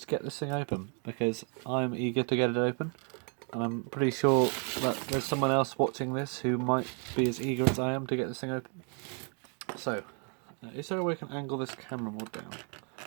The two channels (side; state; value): left; quieter; 38.7 dB